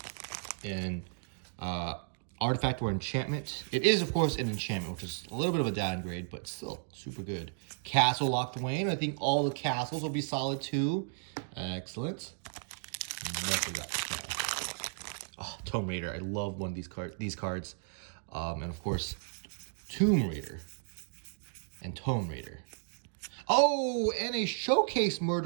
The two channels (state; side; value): silent; left; digital silence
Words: an artifact or enchantment. It is, of course, an enchantment, which is a little bit of a downgrade, but still super good. Castle locked away, and I think all the castles will be solid too. Excellent. What we got? Oh, Tomb Raider. I love one of these cards. And of course, Tomb Raider and Tomb Raider. Oh, and a Showcase